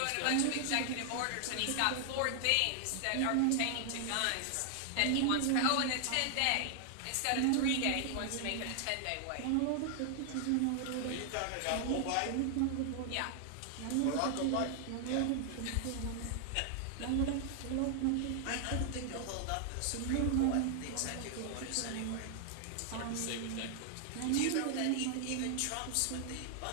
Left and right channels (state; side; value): different; both; correlation 0.00